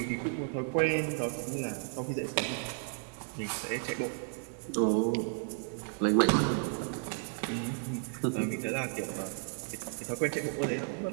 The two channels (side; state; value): left; silent; 56 dB below the other